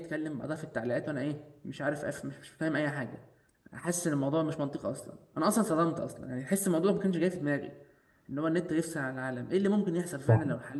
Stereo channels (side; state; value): both; identical; correlation 1.00